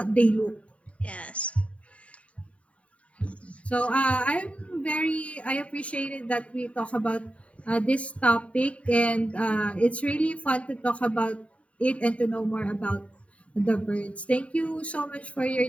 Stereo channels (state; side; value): late; right; 0.065 ms